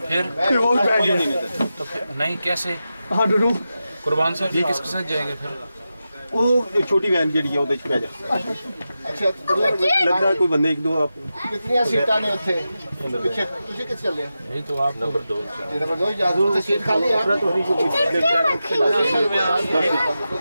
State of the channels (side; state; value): both; inverted; correlation -0.91